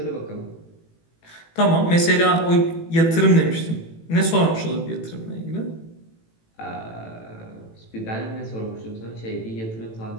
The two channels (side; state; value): right; late; 18 ms